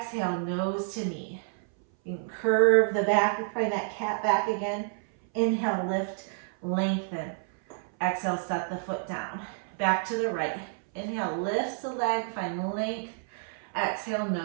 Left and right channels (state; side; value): silent; left; 59 dB below the other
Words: nose to knee. You can curve the back, find that cat back again. Inhale, lift, lengthen. Exhale, set the foot down. Back to the right. Inhale, lifts the leg, find length. Exhale,